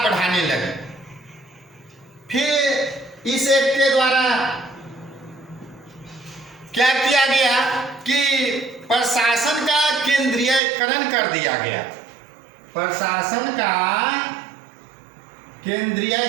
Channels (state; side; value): drops out; left; at 10.6 s